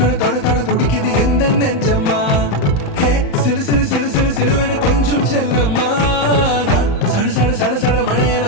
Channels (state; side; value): late; right; 35 ms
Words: தொட தொட துடிக்குது எந்த நெஞ்சம்மா ஹே சிலு சிலு சிலு சிலு சிலுவன கொஞ்சம் செல்லம்மா நான் சட சட சட சட